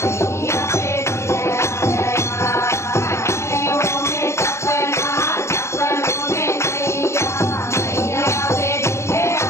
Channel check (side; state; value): right; late; 0.13 ms